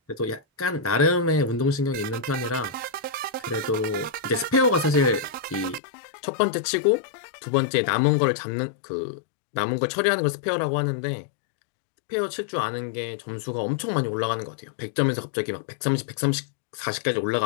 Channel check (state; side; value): drops out; right; at 5.8 s